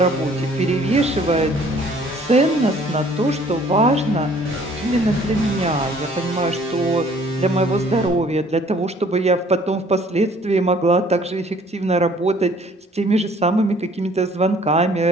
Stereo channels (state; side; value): normal; both; correlation 0.57